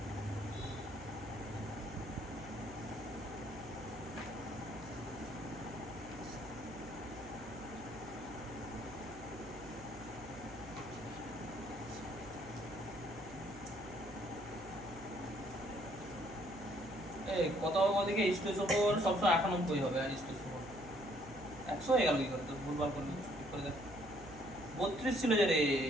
এই কত হবে ওদিকে H2SO4 সবসময় 91 হবে আর H2SO4 100 হয়ে গেল কি করে তো ভুলভাল করলি ঠিক করে দেখ 32 ছিল যে রে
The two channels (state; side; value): noise; right; hum, 18 dB below the sound